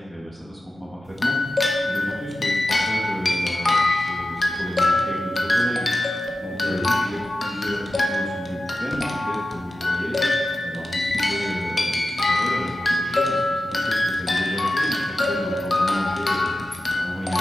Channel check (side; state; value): both; normal; correlation 0.93